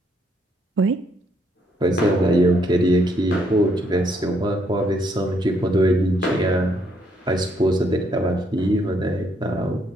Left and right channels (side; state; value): both; normal; correlation 0.72